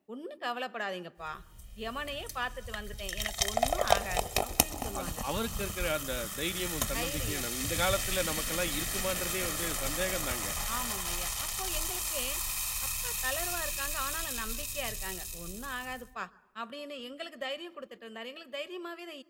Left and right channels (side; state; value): both; identical; correlation 1.00